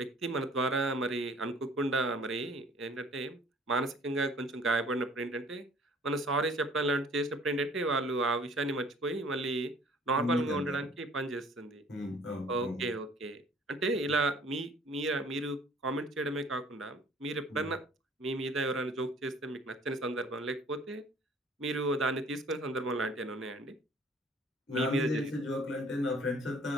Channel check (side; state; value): both; normal; correlation 0.53